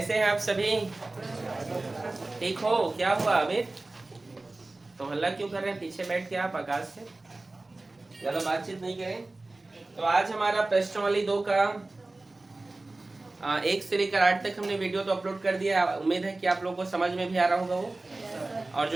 हैं आप सभी? ठीक हो? क्या हुआ अमित? तो हल्ला क्यों कर रहे हैं? पीछे बैठ के आप आकाश से ज्यादा बातचीत नहीं करें। तो आज हमारा प्रश्नावली 2 का 1 से लेकर 8 तक हमने वीडियो तो अपलोड कर दिया। उम्मीद है कि आप लोगों को समझ में भी आ रहा होगा वो। और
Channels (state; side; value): quieter; left; 3.1 dB